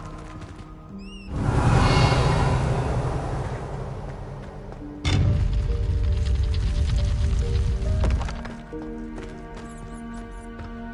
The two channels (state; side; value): identical; both; correlation 1.00